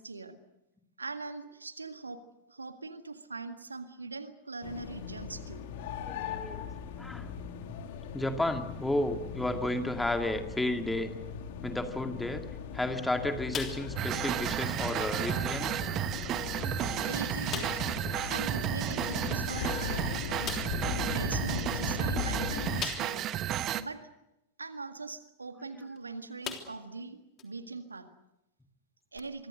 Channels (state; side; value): normal; both; correlation 0.38